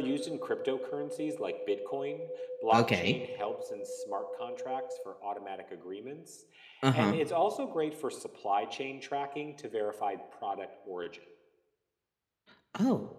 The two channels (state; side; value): identical; both; correlation 1.00